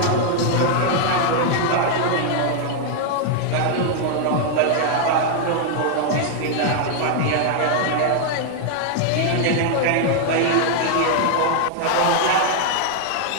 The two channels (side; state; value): both; different; correlation 0.00